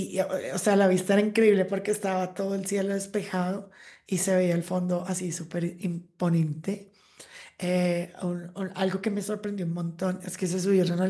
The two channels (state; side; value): identical; both; correlation 1.00